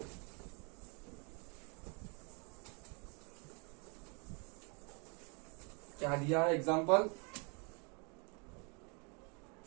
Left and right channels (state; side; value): quieter; left; 33.9 dB